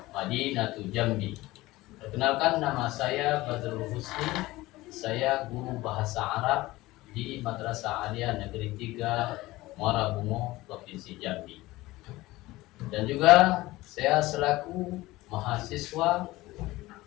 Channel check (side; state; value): right; quieter; 18.8 dB